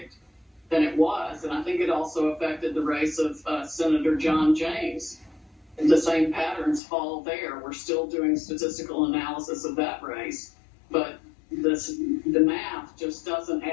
than it was, and I think it also affected the race of Senator John James. The same patterns fall there. We're still doing statistical analysis of that race, but the math just doesn't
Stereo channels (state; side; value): drops out; right; at 6.8 s